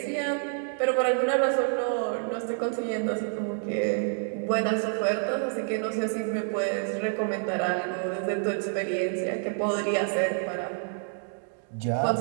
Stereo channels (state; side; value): silent; left; 59 dB below the other